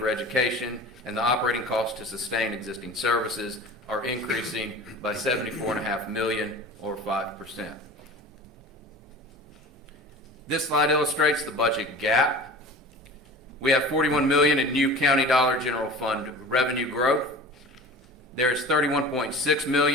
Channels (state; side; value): normal; both; correlation 0.38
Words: education, and the operating costs to sustain existing services are increasing by $74.5 million or 5%. This slide illustrates the budget gap. We have $41 million in new county dollar general fund revenue growth. There is $31.6